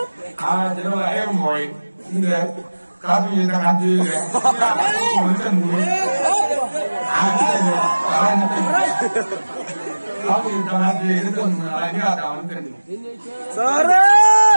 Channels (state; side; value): inverted; both; correlation -1.00